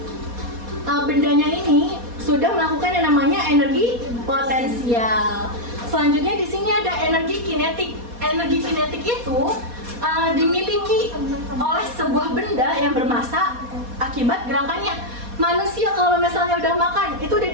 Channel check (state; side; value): late; left; 4.2 ms